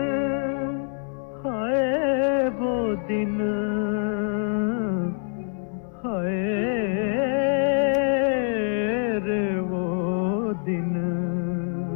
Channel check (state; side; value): silent; right; 62 dB below the other